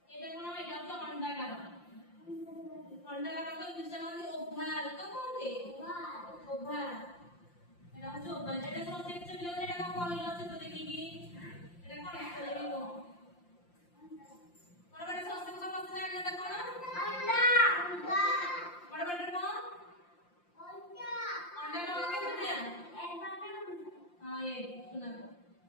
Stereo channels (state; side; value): late; right; 5.7 ms